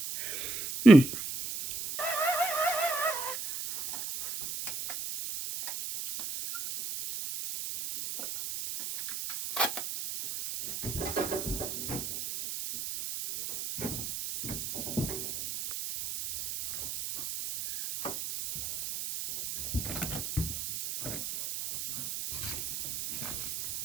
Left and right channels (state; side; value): noise; right; hiss, 5 dB below the sound